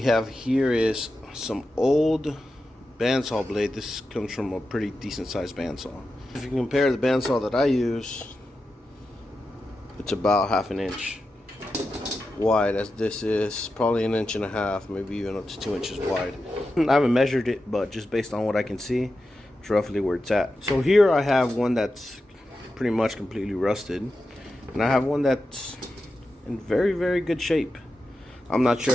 here is some old bandsaw blade. This comes from a pretty decent sized bandsaw. If you compare the bandsaw that I use, it's about half an inch wide, as this is probably an inch and a half, maybe even up to 2 inches wide. I haven't measured it, but just based on what I can see, it's roughly where it's at. So here I have one that's pretty much completely rusted, and I have one that's in very, very good shape. I'm not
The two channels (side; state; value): both; normal; correlation 0.90